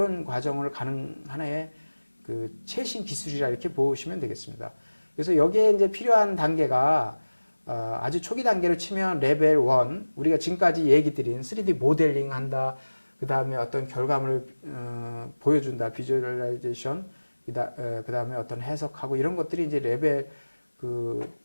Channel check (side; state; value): both; inverted; correlation -1.00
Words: 과정을 가는 하나의 그 최신 기술이라 이렇게 보시면 되겠습니다. 그래서 여기에 이제 필요한 단계가 아주 초기 단계로 치면 레벨 1, 우리가 지금까지 얘기 드린 3D 모델링 한다, 그 다음에 어떤 결과물을 보여준다, 비주얼라이제이션, 그 다음에 어떤 해석하고 이런 것들이 이제 레벨